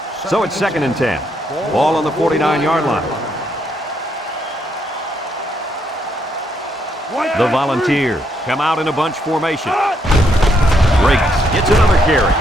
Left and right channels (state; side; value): normal; both; correlation 0.75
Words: So it's second and 10. Ball on the 49-yard line. The Volunteers come out in a bunch formation. Briggs gets another carry.